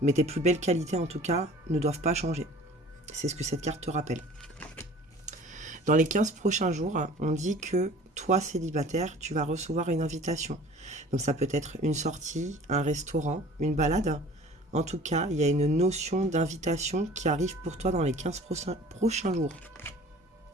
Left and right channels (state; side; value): normal; both; correlation 0.46